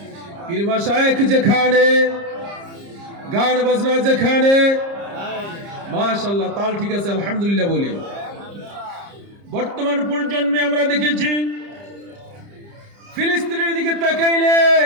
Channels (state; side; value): late; left; 30 ms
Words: পীর মাশায়েখ যেখানে গান বাজনা যেখানে মাশাআল্লাহ তাল ঠিক আছে আলহামদুলিল্লাহ বলি। বর্তমান প্রজন্মে আমরা দেখেছি ফিলিস্তিনের দিকে তাকাইলে